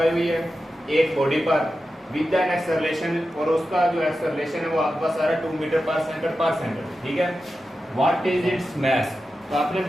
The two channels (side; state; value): both; normal; correlation 0.91